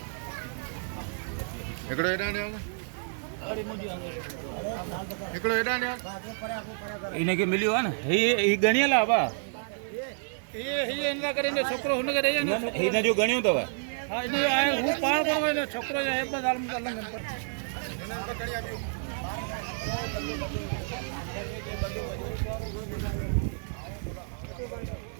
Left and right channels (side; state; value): left; silent; digital silence